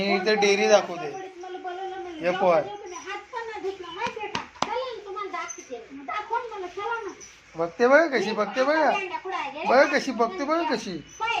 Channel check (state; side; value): identical; both; correlation 1.00